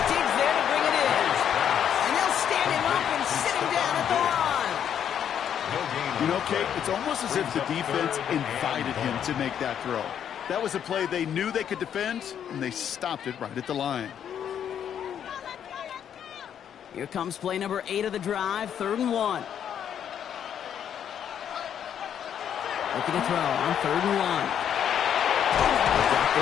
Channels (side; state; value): right; quieter; 9.1 dB